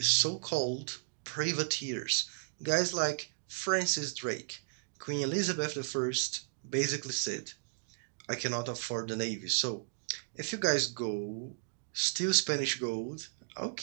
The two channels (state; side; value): silent; left; digital silence